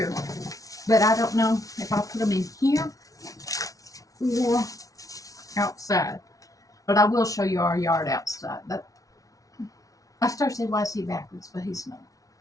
but I don't know if I'll put them in here or outside. But I will show you our yard outside. I started saying YC backwards, but he's not.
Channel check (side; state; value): right; late; 0.17 ms